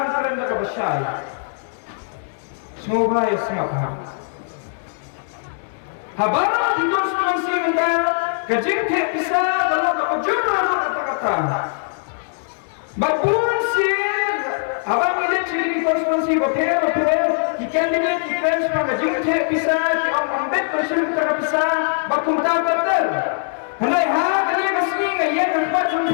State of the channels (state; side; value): silent; right; digital silence